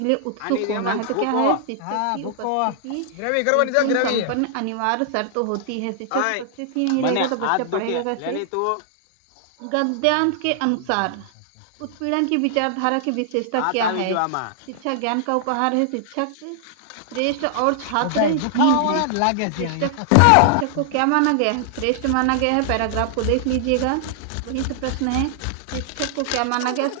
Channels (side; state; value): both; different; correlation -0.01